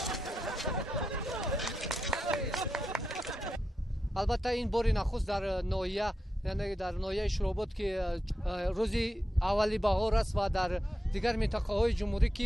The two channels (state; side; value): normal; both; correlation 0.88